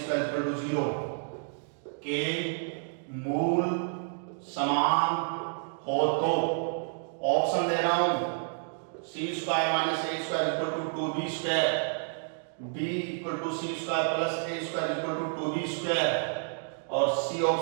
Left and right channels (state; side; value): silent; left; digital silence